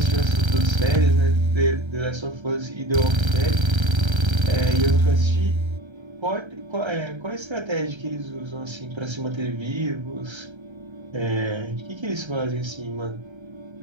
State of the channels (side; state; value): left; late; 1.3 ms